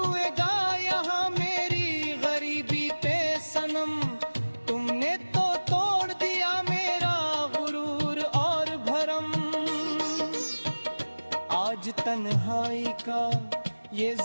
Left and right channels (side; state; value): both; inverted; correlation -1.00